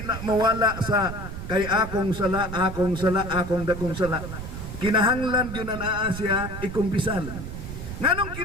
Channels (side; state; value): right; noise; rumble, 8 dB below the sound